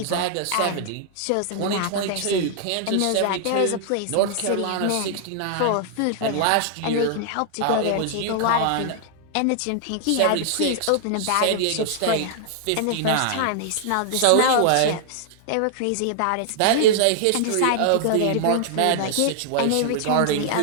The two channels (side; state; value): both; different; correlation -0.01